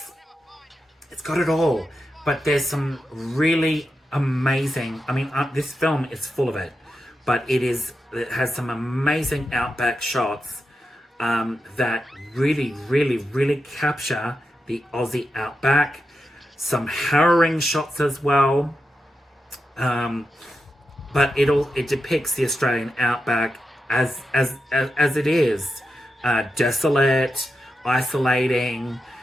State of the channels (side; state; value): both; normal; correlation 0.88